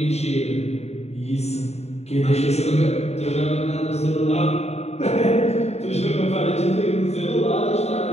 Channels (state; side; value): late; right; 0.31 ms